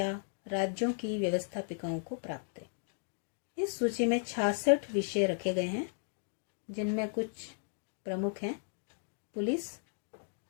राज्यों की व्यवस्थापिकाओं को प्राप्त है। इस सूची में 66 विषय रखे गए हैं, जिनमें कुछ प्रमुख हैं: पुलिस,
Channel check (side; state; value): right; silent; digital silence